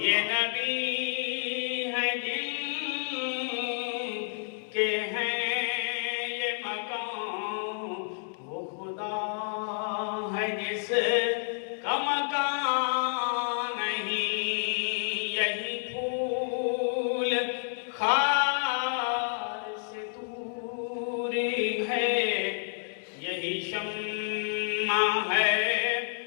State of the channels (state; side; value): silent; right; digital silence